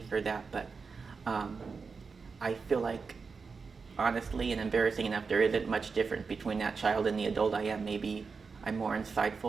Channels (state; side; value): quieter; left; 5.0 dB